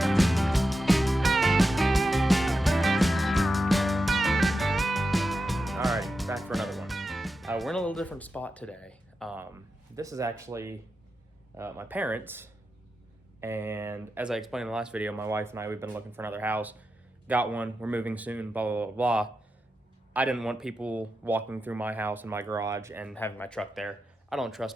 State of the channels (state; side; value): normal; both; correlation 0.89